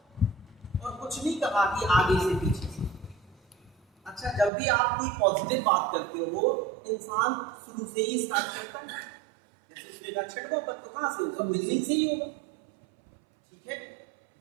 और कुछ नहीं कहा कि आगे से पीछे से। अच्छा, जब भी आप कोई पॉजिटिव बात करते हो इंसान शुरू से ही स्टार्ट करता है। जैसे उसने कहा छठवां पद, तो कहां से होगा? बिगिनिंग से ही होगा। ठीक है,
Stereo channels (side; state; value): left; drops out; at 4.5 s